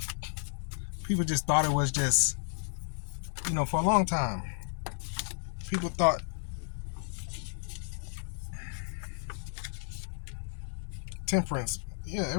just thought it was just, you know, for a long time. People thought temperance. Yeah,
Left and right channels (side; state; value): right; silent; digital silence